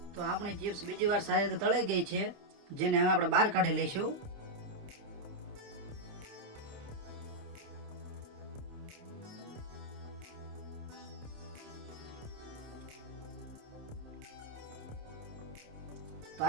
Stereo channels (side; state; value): left; late; 28 ms